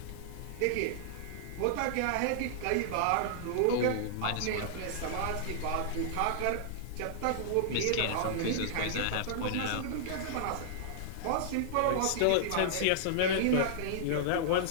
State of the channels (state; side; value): different; both; correlation -0.01